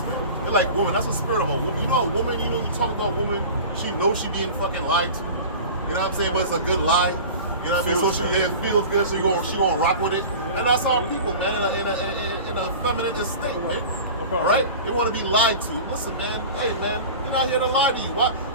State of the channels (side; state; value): both; inverted; correlation -0.36